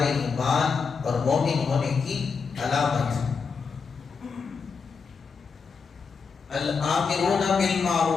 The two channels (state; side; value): quieter; right; 5.3 dB